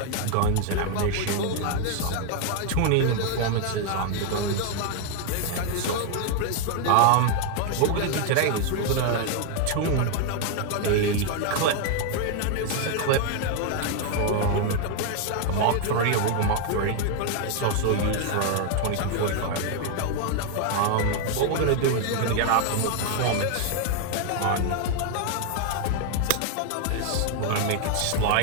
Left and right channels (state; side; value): different; both; correlation 0.00